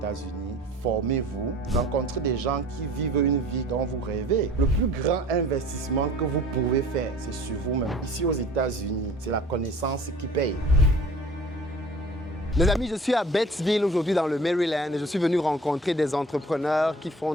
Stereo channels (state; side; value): normal; both; correlation 0.46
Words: formez-vous, rencontrez des gens qui vivent une vie dont vous rêvez. Le plus grand investissement que vous pouvez faire, c'est sur vous-même. Ici aux États-Unis, c'est la connaissance qui paye. Les amis, je suis à Batesville aujourd'hui dans le Maryland et je suis venu rencontrer des entrepreneurs qui font